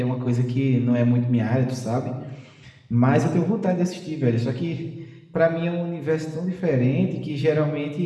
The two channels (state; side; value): identical; both; correlation 1.00